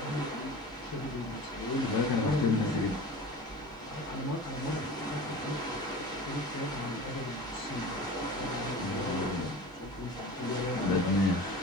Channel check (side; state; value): both; normal; correlation 0.37